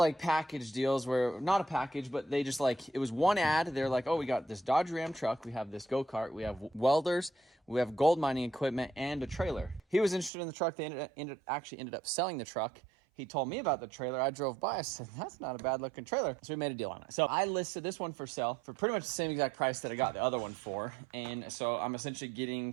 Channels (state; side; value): drops out; left; at 10.3 s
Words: package deals where, not a package, but they just like, it was one ad. They're like, oh, we got this Dodge Ram truck, we have this go-kart, we have welders, we have gold mining equipment, and a trailer. He was interested in the truck. They actually ended up selling the truck. He told me about the trailer. I drove by. I said, that's not a bad looking trailer. So we made a deal on it. So I listed this one for sale for pretty much the same exact price that I got the other one for. And so I'm essentially getting